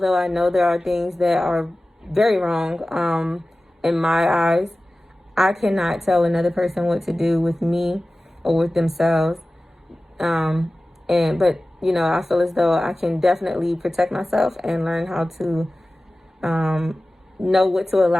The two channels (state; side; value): normal; both; correlation 0.96